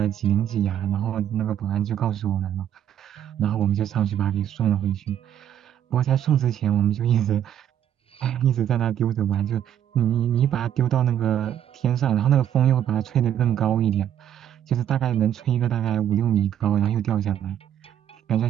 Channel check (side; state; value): left; quieter; 10.2 dB